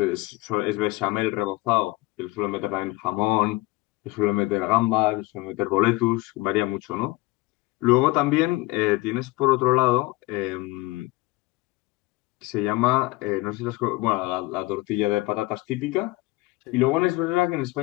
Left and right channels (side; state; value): right; quieter; 20.9 dB